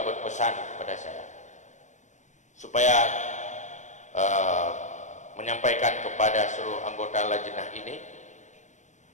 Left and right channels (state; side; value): late; right; 0.35 ms